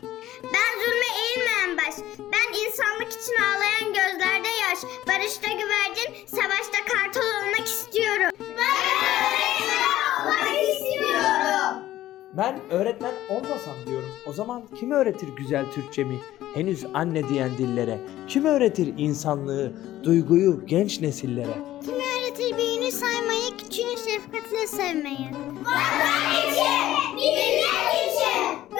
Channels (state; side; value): quieter; right; 14.2 dB